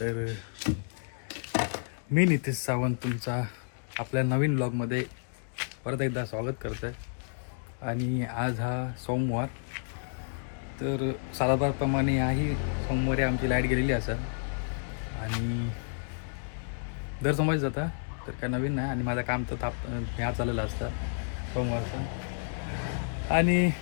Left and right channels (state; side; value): silent; right; digital silence